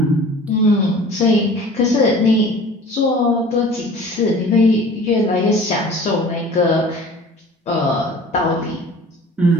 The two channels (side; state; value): both; normal; correlation 0.44